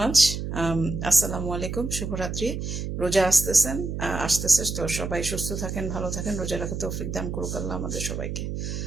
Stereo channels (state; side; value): noise; right; hum, 4 dB below the sound